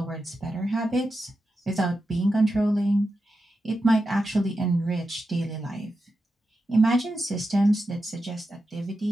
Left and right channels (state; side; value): normal; both; correlation 0.89